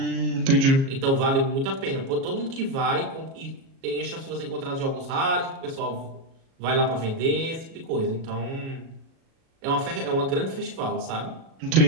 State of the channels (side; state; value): left; late; 37 ms